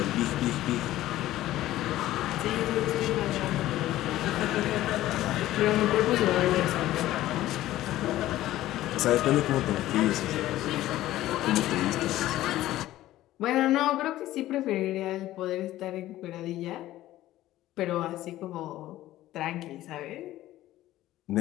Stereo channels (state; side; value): quieter; right; 14.9 dB